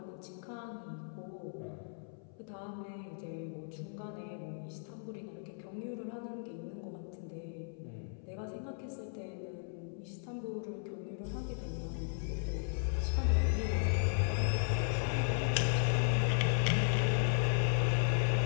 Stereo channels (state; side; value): silent; right; 54 dB below the other